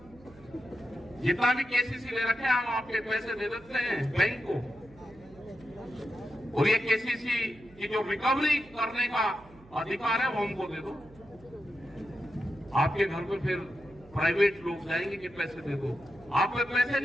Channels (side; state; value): right; noise; hum, 24 dB below the sound